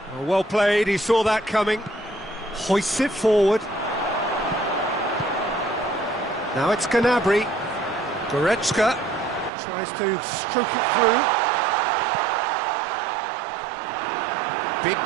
Oh, well played, he saw that coming. Hoists it forward. Now it's Gnabry. Goretzka tries to stroke it through. Big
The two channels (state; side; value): drops out; left; at 9.5 s